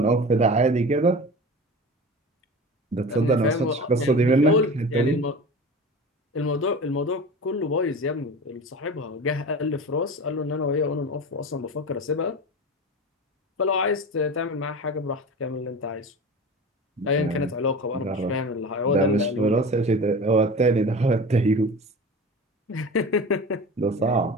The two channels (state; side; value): normal; both; correlation 0.33